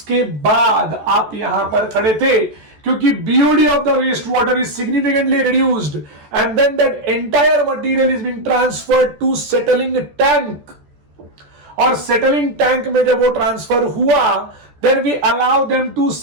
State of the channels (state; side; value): late; left; 14 ms